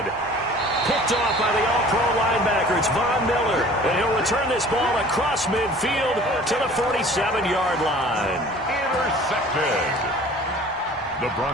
Picked off by the all-pro linebacker. It's Von Miller. And he'll return this ball across midfield to the 47-yard line. Intercepted. The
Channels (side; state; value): both; normal; correlation 0.47